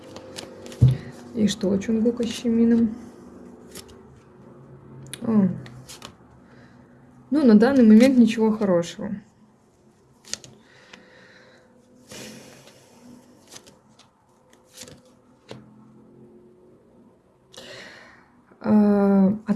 И что у Чонгука с Чимином? О. Ну, на данный момент ничего хорошего.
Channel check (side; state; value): both; identical; correlation 1.00